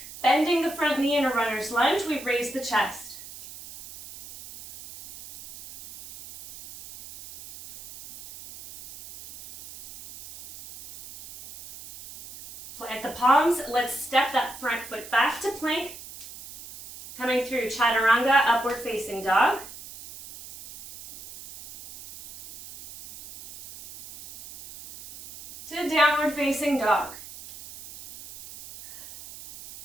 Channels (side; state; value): right; noise; hiss, 15 dB below the sound